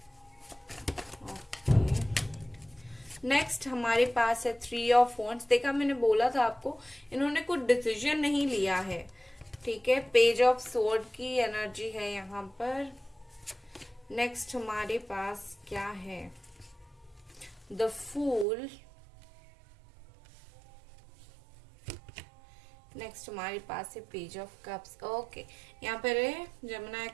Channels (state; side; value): drops out; left; at 18.4 s